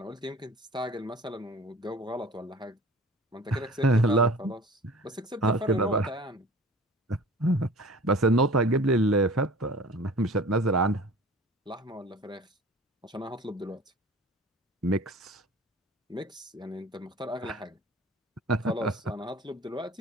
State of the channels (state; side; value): normal; both; correlation 0.42